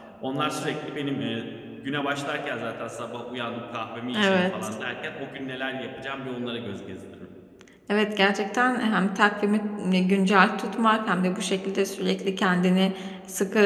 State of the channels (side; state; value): both; identical; correlation 1.00